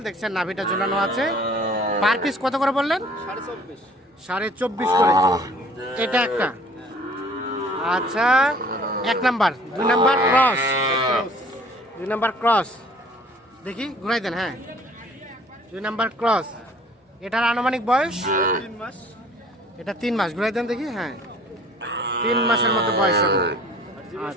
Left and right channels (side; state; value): both; normal; correlation 0.53